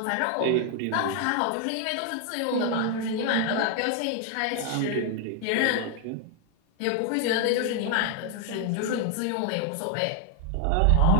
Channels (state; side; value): different; both; correlation 0.00